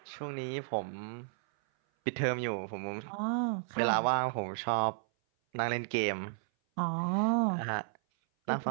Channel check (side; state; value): left; silent; 56 dB below the other